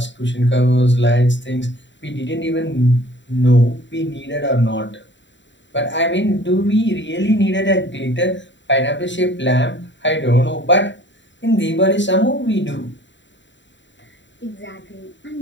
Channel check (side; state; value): right; late; 0.53 ms